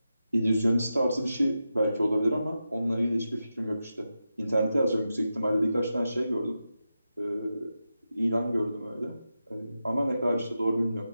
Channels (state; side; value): inverted; both; correlation -0.90